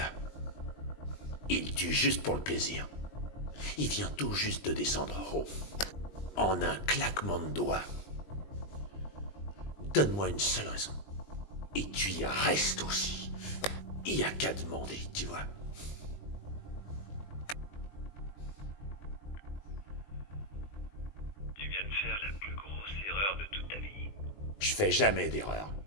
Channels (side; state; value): right; late; 20 ms